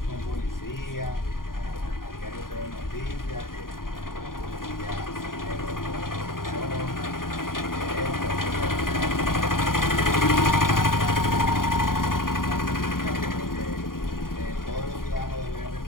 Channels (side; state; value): right; late; 0.91 ms